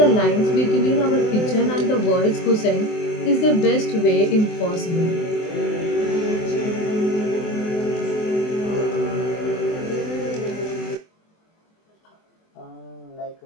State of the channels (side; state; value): right; late; 24 ms